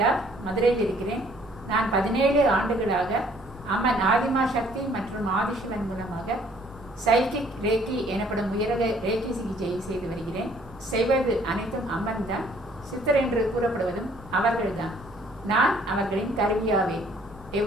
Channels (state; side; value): normal; both; correlation 0.60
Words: மதுரையில் இருக்கிறேன். நான் 17 ஆண்டுகளாக அம்மன் ஆதிமா சக்தி மற்றும் ஆதிசிவன் மூலமாக சைக்கிக் ரேக்கி எனப்படும் உயரக ரேக்கி சிகிச்சையை செய்து வருகிறேன். செய்வது அனைத்தும் அம்மன் தான். சித்தர் என்று கூறப்படுவதும் அவர்கள்தான். நான் அவர்களின் கருவியாவேன்.